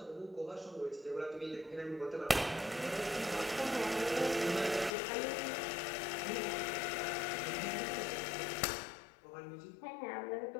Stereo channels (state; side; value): drops out; right; at 4.9 s